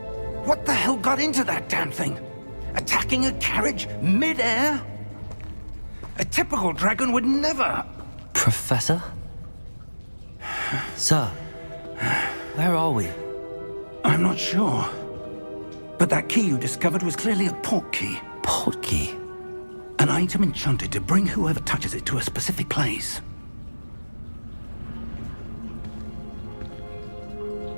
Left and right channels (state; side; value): inverted; both; correlation -1.00